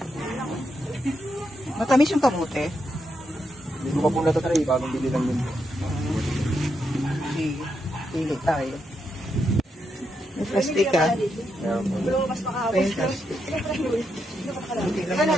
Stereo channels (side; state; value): both; normal; correlation 0.82